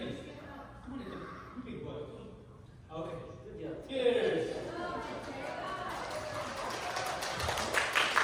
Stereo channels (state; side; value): identical; both; correlation 1.00